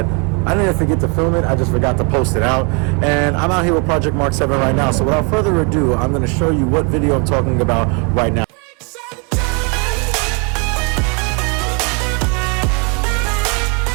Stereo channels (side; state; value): left; quieter; 34.3 dB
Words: I didn't forget to film it, I just forgot to post it out. And I'm out here with Project Mark 7 right now. So without further ado, I'm going to show you what video I'm talking about right now.